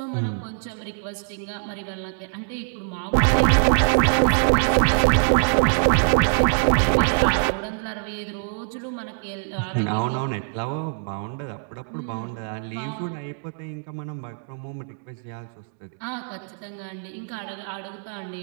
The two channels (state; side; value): silent; left; 63 dB below the other